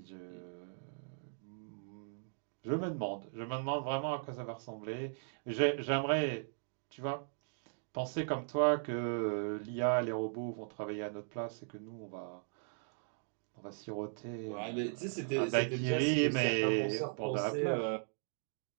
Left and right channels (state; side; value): silent; left; digital silence